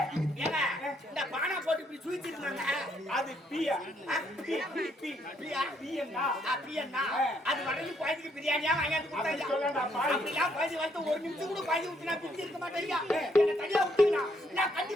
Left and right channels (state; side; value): normal; both; correlation 0.71